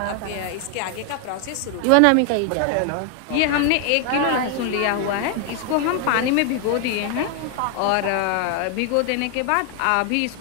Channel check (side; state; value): both; different; correlation 0.00